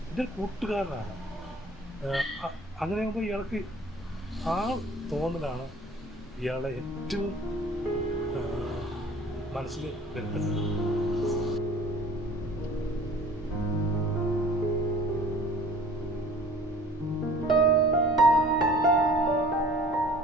എൻ്റെ കൂട്ടുകാരനാണ്. അങ്ങനെ ആകുമ്പോൾ ഇയാൾക്ക് ആ തോന്നലാണ് ഇയാളെ ഏറ്റവും മനസ്സിൽ വരുന്നത്.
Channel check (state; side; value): normal; both; correlation 0.49